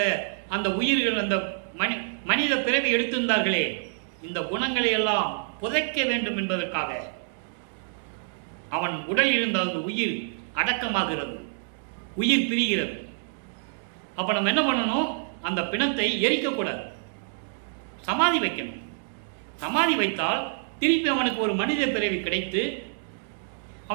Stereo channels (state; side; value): silent; left; digital silence